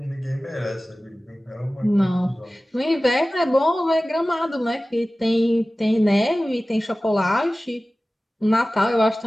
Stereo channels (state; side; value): normal; both; correlation 0.97